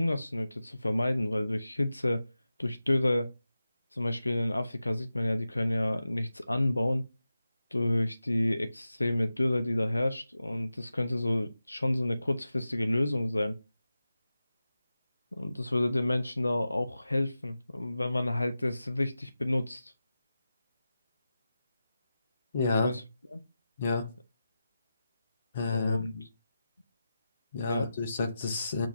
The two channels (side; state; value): both; inverted; correlation -0.93